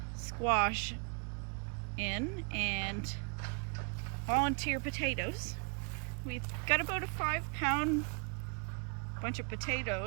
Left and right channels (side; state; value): left; quieter; 37.8 dB